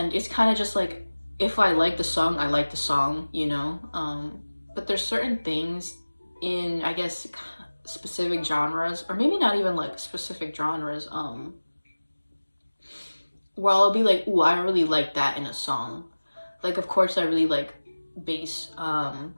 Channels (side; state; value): both; inverted; correlation -1.00